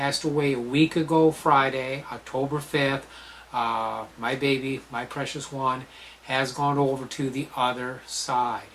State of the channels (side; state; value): both; identical; correlation 1.00